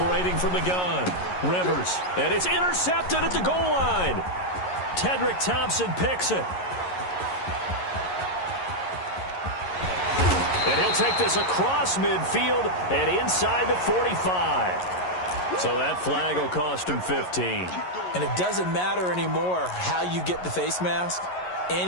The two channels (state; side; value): late; right; 11 ms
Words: from the gun, Rivers, and it's intercepted at the goal line. Tedrick Thompson picks it. And he'll take this across midfield and inside the 45. So that flag will cost him 15. And it doesn't matter anymore how you get the face mask.